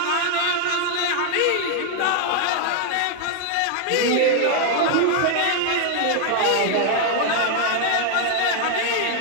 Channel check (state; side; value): different; both; correlation 0.00